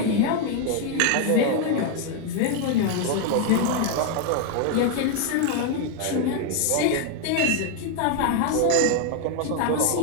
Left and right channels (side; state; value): both; different; correlation 0.01